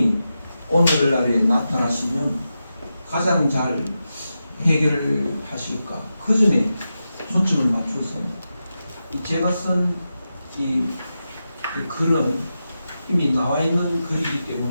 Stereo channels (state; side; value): inverted; both; correlation -0.90